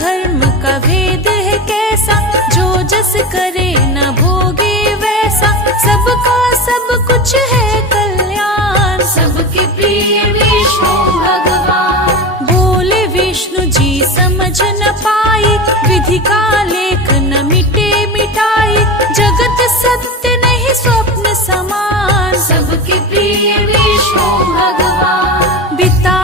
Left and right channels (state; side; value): normal; both; correlation 0.25